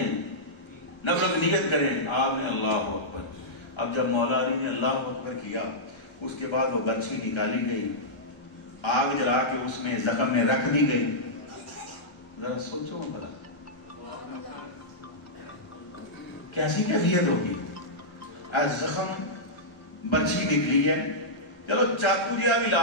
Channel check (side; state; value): right; late; 1.3 ms